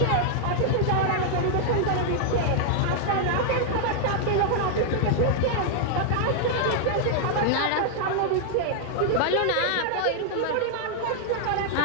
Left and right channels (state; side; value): different; both; correlation -0.01